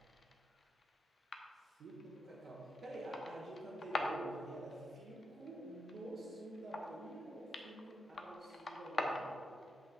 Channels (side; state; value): both; normal; correlation 0.84